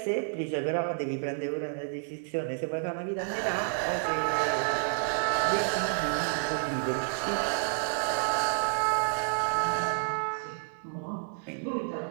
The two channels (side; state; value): left; silent; digital silence